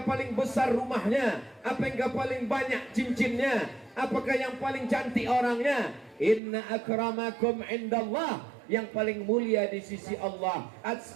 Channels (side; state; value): left; drops out; at 6.4 s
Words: paling besar rumahnya? Apakah paling banyak cincinnya? Apakah yang paling cantik orangnya? Inna akramakum indallah, yang paling mulia di sisi Allah,